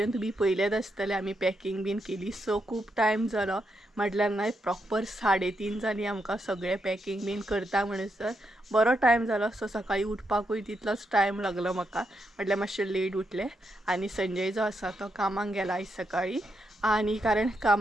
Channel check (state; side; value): normal; both; correlation 0.82